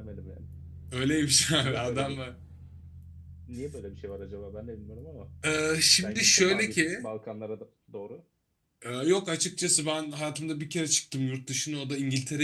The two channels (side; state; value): both; identical; correlation 1.00